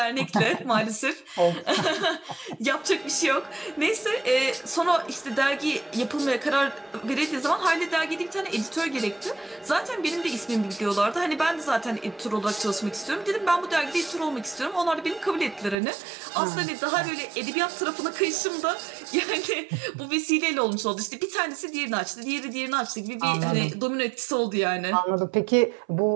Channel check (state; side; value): drops out; left; at 15.8 s